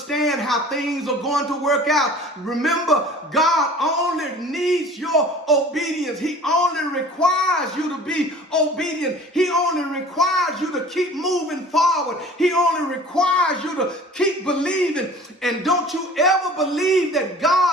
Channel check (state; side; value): normal; both; correlation 0.45